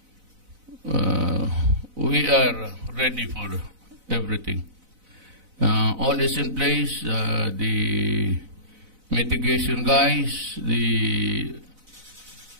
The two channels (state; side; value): late; left; 4.0 ms